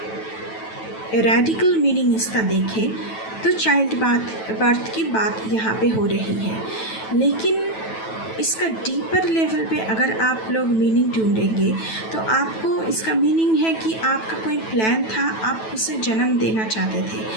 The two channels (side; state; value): right; late; 9.1 ms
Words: रेडिकल मीनिंग इसका देखें तो चाइल्ड बर्थ की बात यहाँ पे हो रही है, लेकिन इसका डीपर लेवल पे अगर आप लोग मीनिंग ढूंढेंगे तो आपको इसका मीनिंग है कि आपका कोई प्लान था, आप उसे जन्म देना चाहते थे,